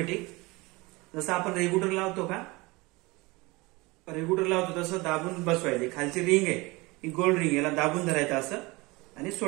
जसं आपण रेग्युलेटर लावतो का, रेग्युलेटर लावतो तसं दाबून बसवायचे. खालची रिंग आहे ही गोल्ड रिंग, याला दाबून धरायचं असं आणि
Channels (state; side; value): quieter; left; 23.8 dB